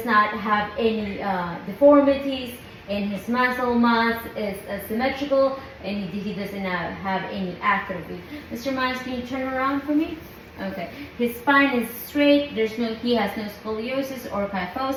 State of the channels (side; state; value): both; identical; correlation 1.00